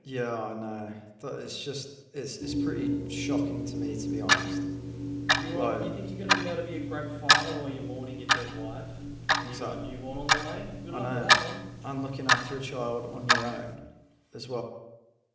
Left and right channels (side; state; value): both; identical; correlation 1.00